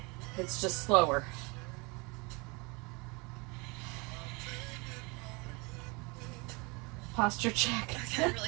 It's just slower. Posture check. Okay,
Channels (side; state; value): left; quieter; 28.3 dB